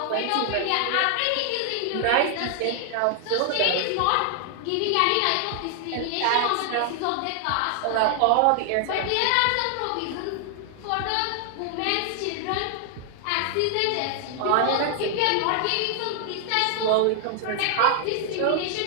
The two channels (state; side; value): different; both; correlation 0.00